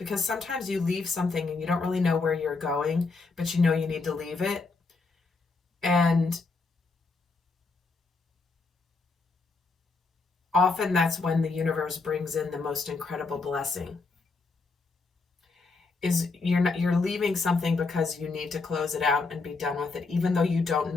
sometimes you leave something and you don't really know where you're going, but you know you need to leave it. And often that's when the universe brings in the most incredible blessing. Is you're leaving something because you need to close it out and be done with it, even though you don't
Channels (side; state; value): right; quieter; 4.0 dB